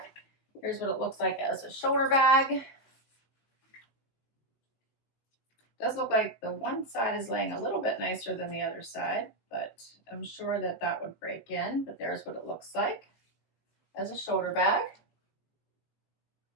Here's what it looks like as a shoulder bag. Does look like the one side is laying a little bit nicer than the other side, but I'm sure that that would break in. But there's what it looks like as a shoulder bag.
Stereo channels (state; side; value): late; right; 19 ms